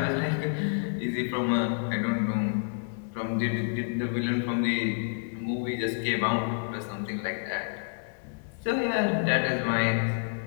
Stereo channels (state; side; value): silent; right; 59 dB below the other